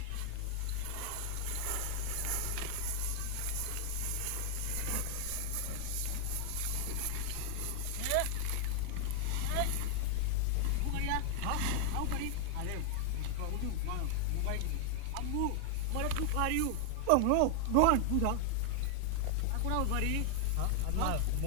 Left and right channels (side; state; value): both; different; correlation 0.00